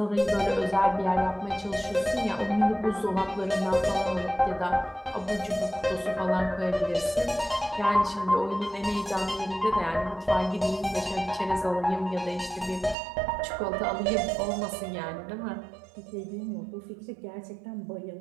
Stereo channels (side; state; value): left; drops out; at 13.0 s